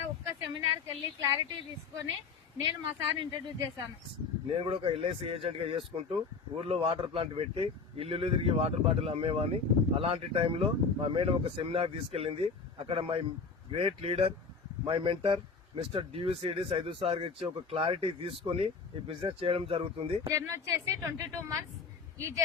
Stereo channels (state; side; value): quieter; right; 4.9 dB